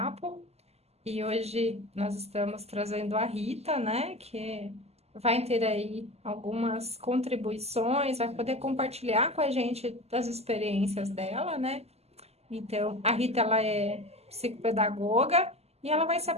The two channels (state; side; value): late; left; 0.30 ms